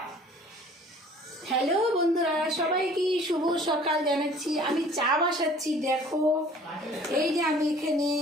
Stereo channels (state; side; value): normal; both; correlation 0.51